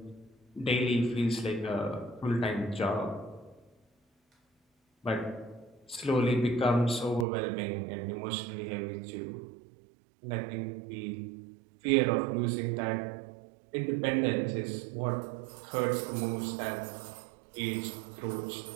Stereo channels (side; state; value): left; drops out; at 7.2 s